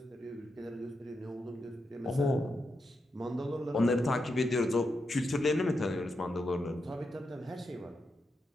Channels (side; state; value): both; normal; correlation 0.85